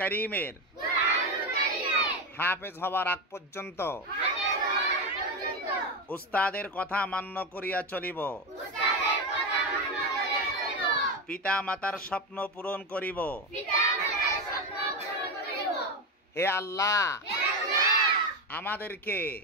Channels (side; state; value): both; normal; correlation 0.16